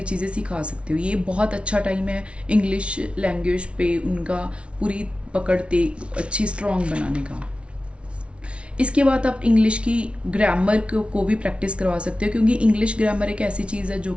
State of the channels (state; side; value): late; left; 0.060 ms